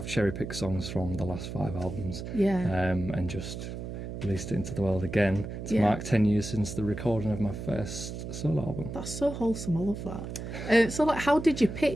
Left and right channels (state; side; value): noise; right; hum, 7 dB below the sound